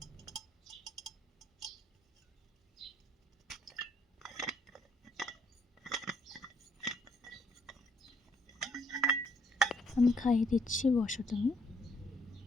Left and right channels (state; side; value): normal; both; correlation 0.68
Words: আমি খাইয়ে দিচ্ছি, বসো তুমি।